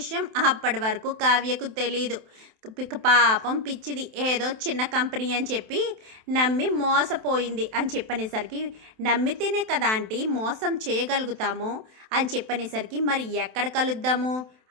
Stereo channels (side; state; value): left; late; 27 ms